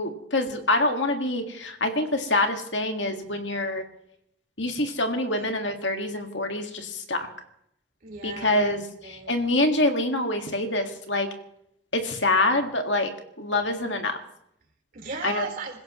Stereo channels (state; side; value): normal; both; correlation -0.12